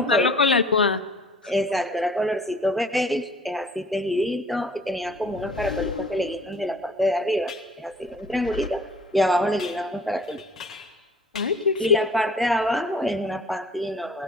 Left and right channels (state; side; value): normal; both; correlation 0.50